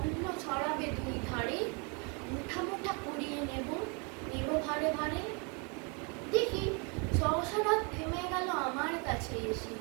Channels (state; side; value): quieter; left; 33.9 dB